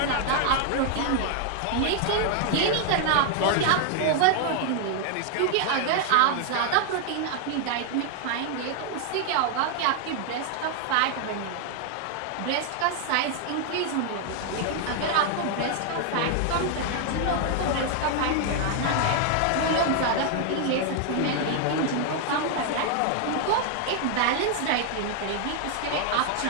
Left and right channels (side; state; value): both; different; correlation 0.00